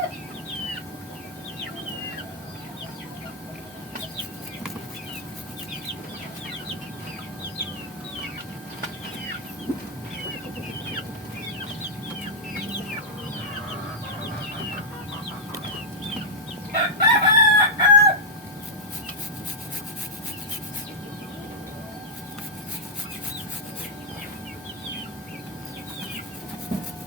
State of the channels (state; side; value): normal; both; correlation -0.04